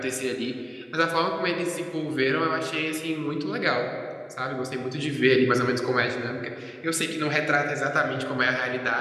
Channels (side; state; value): both; identical; correlation 1.00